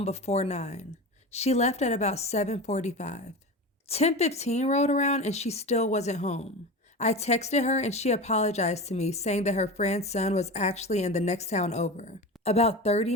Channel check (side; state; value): both; normal; correlation 0.28